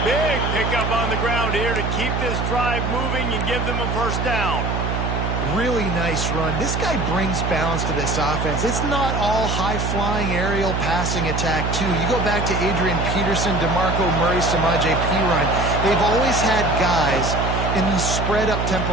Big pickup on the ground here to keep this drive moving and give them a 1st down. Really nice run. This guy brings balance to this offense. It's not all high-flying aerial passing attack, too. You go back to Adrian Peterson, DeMarco Murray, Samaje Perine. They've always had guys in these spread-up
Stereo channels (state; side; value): noise; right; hum, 1 dB below the sound